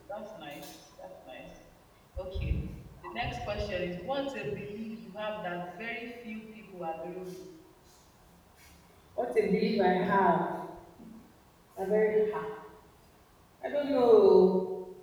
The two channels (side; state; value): both; identical; correlation 1.00